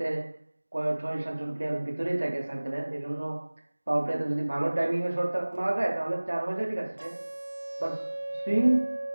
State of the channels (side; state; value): both; inverted; correlation -1.00